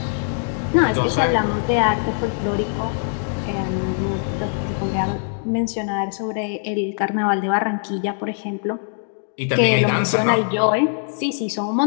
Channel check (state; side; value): silent; right; digital silence